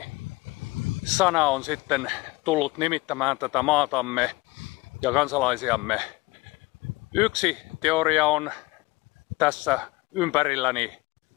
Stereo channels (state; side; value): quieter; right; 21.9 dB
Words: on sitten tullut nimittämään tätä maatamme ja kansalaisiamme. Yksi teoria on tässä ympärilläni.